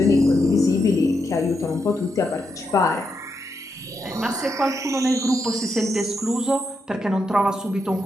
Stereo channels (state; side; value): normal; both; correlation 0.82